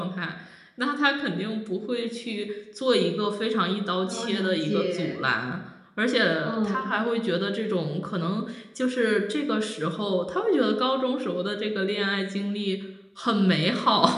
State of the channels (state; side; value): identical; both; correlation 1.00